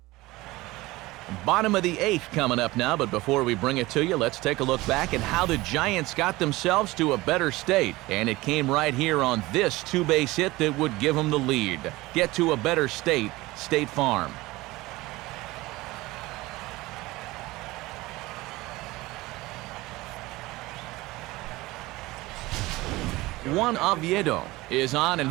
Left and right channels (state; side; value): quieter; left; 19.8 dB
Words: Bottom of the 8th coming up now, but before we bring it to you, let's take a look back at how the Giants got themselves to a better state. And it came right here on this 2-base hit that would give them the lead. Get to a better state, State Farm. Juan Oviedo is on, and